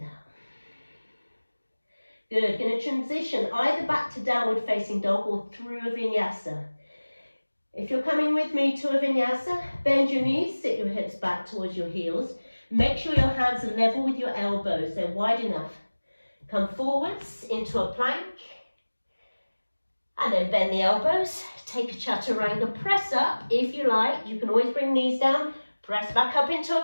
Good. Going to transition either back to downward facing dog or through a vinyasa. If you're coming with me to a vinyasa, bend your knees, sit your hips back towards your heels. Make sure your hands are level with your elbows, they're wide enough. Come forwards into a plank, and then bend the elbows, take a chaturanga, press up if you like. You can always bring knees down, press back up into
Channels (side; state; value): both; inverted; correlation -1.00